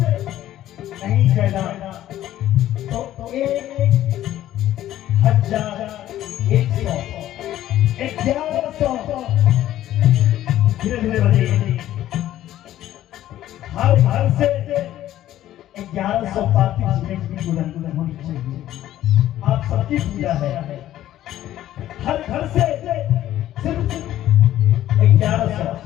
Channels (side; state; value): right; quieter; 13.1 dB